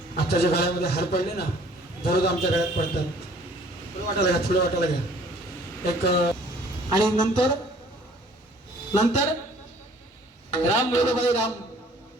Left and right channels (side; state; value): both; normal; correlation 0.55